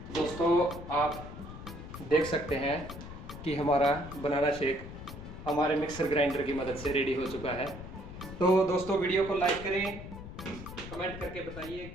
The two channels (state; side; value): noise; left; rumble, 11 dB below the sound